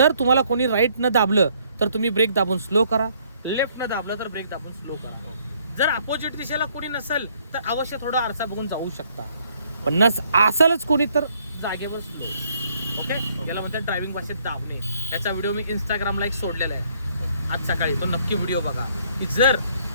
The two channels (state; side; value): inverted; both; correlation -0.65